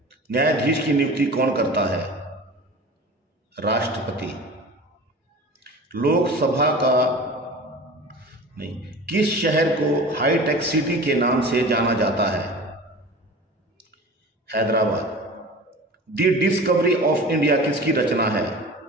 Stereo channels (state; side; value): normal; both; correlation 0.37